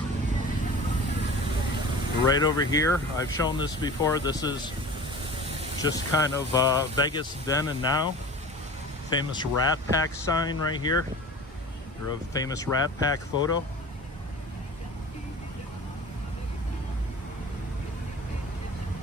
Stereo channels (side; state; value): both; normal; correlation 0.38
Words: Right over here, I've shown this before. This is just kind of Vegas then and now. Famous Rat Pack sign right here. Or a famous Rat Pack photo.